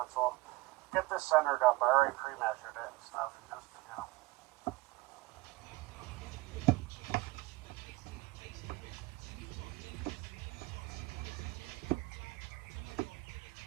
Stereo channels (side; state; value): left; quieter; 21.5 dB